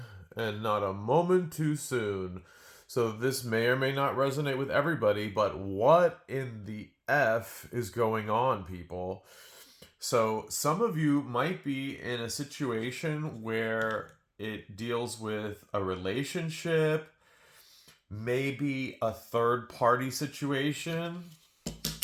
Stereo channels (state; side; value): identical; both; correlation 1.00